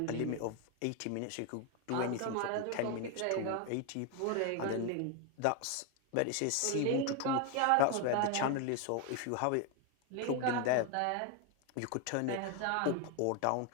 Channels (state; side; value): different; both; correlation 0.01